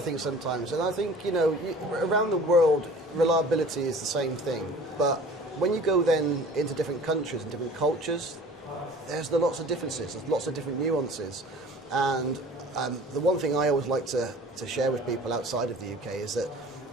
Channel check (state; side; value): normal; both; correlation 0.45